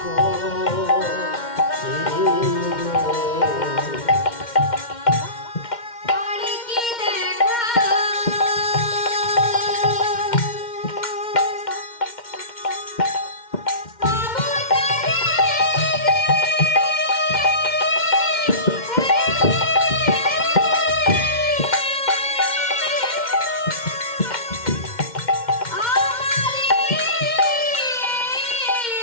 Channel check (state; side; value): late; right; 2.1 ms